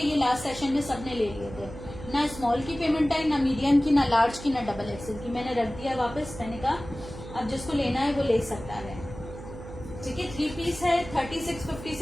लास्ट सेशन में सबने ले लिए थे, ना स्मॉल की पेमेंट आई, ना मीडियम की, ना लार्ज की, ना डबल एक्सेल की। मैंने रख दिया वापस, मैंने कहा अब जिसको लेना है वो ले सकता है। ठीक है, 3 पीस है, 3650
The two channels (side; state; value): right; noise; hum, 13 dB below the sound